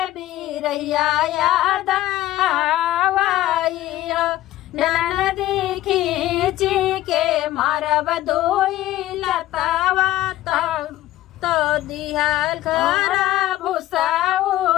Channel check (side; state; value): right; quieter; 15.0 dB